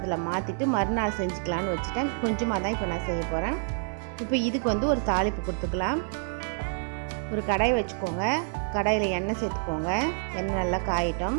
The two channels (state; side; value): silent; left; 59 dB below the other